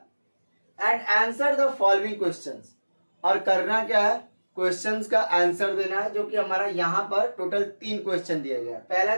And answer the following questions, और करना क्या है? क्वेश्चंस का आंसर देना है, जो कि हमारा यहाँ पर टोटल 3 क्वेश्चन दिया गया है. पहला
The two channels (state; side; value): inverted; both; correlation -1.00